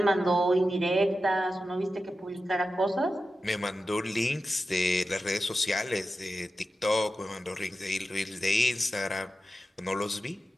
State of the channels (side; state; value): both; normal; correlation 0.92